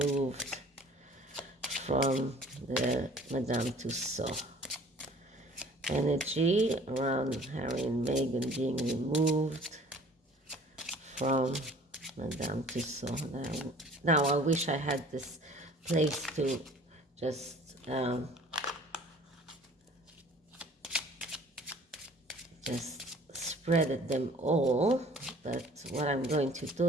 from the Madame Tussauds. Energy around Harry and Meghan being removed from Madame Tussauds. Now I wish I had this place to just spread them all, but what I'm going to do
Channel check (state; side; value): normal; both; correlation 0.51